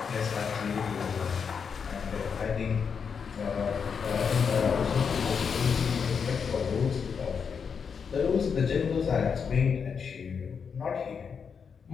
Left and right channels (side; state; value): right; quieter; 6.3 dB